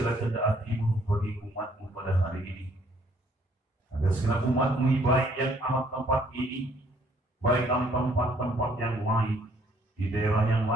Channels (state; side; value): normal; both; correlation 0.64